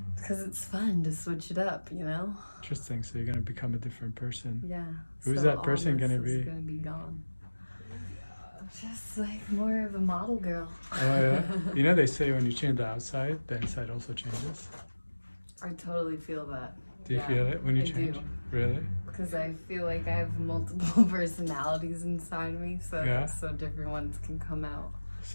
Because it's fun to switch it up, you know? Interesting. So you're going to become a different person. Yeah. Who's so that person going to all this be? is going to be gone. Just like more of a model girl. Oh, yeah? You know, they say when you change the outside, the inside also changes. I totally feel that. Do you feel it when you change? Do. Really? Because I feel like I have multiple personalities inside me, so so different ones can come out.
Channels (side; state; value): both; inverted; correlation -1.00